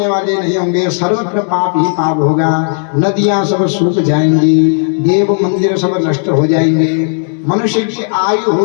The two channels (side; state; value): right; silent; 66 dB below the other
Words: वाले नहीं होंगे, सर्वत्र पाप ही पाप होगा। नदियां सब सूख जाएंगी, देव मंदिर सब नष्ट हो जाएंगे। मनुष्य की आयु